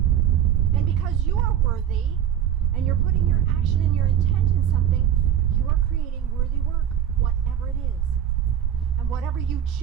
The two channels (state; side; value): quieter; left; 10.1 dB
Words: And because you are worthy, and you're putting your action and your intent in something, you are creating worthy work, whatever it is. And whatever you